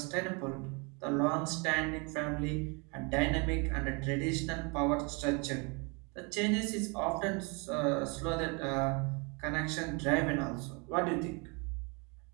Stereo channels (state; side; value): quieter; left; 31.7 dB